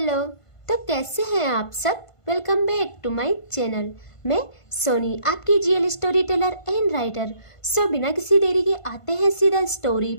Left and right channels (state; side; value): late; right; 1.5 ms